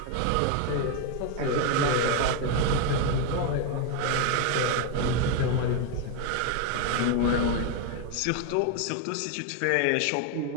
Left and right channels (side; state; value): both; different; correlation 0.01